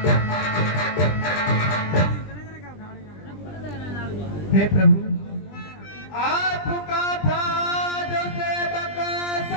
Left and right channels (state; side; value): late; right; 20 ms